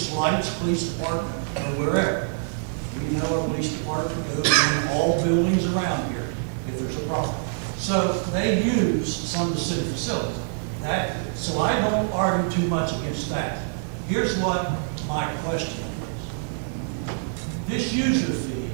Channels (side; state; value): left; silent; 55 dB below the other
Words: lights, police department, or wherever. We know our police department goes in all buildings around here if there's a problem. So they use some of the city facilities. So I don't argue too much against that. Here's what my question is. This user fee,